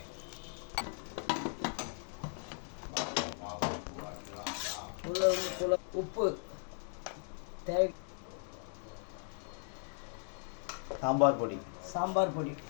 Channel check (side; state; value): right; silent; 53 dB below the other